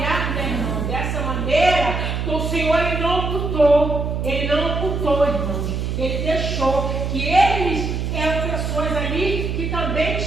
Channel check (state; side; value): noise; right; hum, 2 dB below the sound